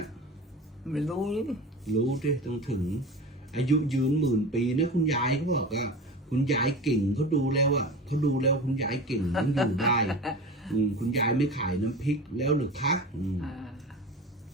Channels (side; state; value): both; normal; correlation 0.32